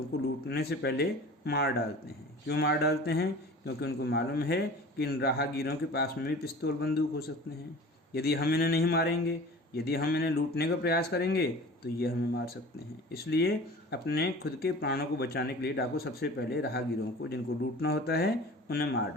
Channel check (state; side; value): normal; both; correlation 0.40